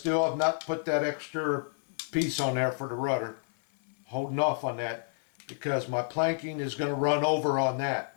have not put that extra piece on there for the rudder. Holding off on that because my planking is going to run over on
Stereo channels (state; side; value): silent; right; 58 dB below the other